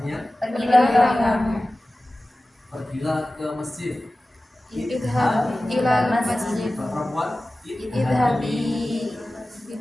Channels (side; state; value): both; normal; correlation 0.96